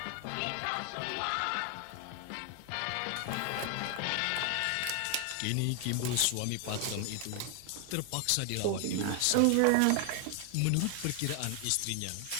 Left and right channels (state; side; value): different; both; correlation 0.00